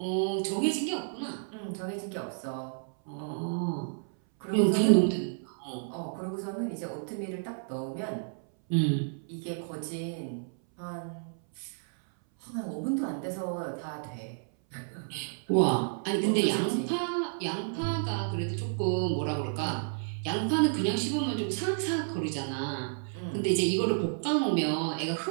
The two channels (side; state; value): left; silent; 57 dB below the other